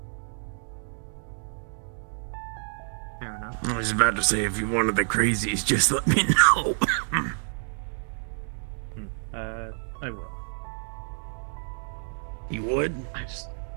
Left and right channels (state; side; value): silent; left; digital silence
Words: Fair enough. I was about to say, if you wanted the crazies, just let me know. I will. You would?